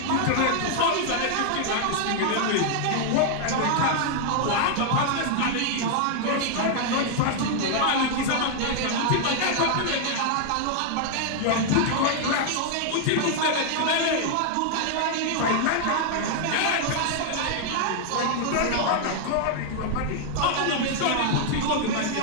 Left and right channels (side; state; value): both; different; correlation 0.00